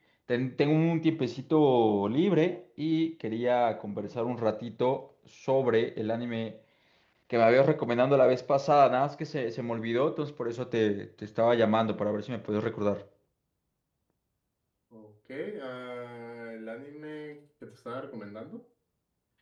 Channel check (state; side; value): identical; both; correlation 1.00